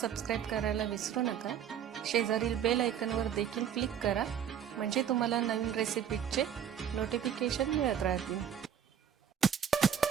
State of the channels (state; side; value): quieter; left; 8.9 dB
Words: करायला विसरू नका. शेजारील बेल आयकॉनवर देखील क्लिक करा, म्हणजे तुम्हाला नवीन रेसिपीचे नोटिफिकेशन मिळत राहतील.